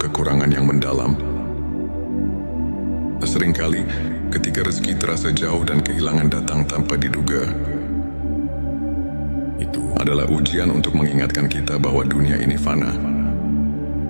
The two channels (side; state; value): both; inverted; correlation -1.00